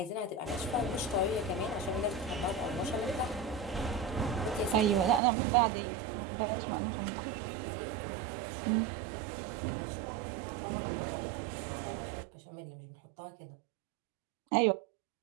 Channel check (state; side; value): drops out; left; at 5.2 s